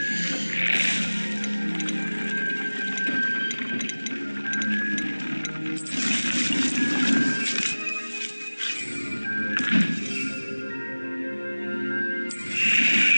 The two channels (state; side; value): inverted; both; correlation -1.00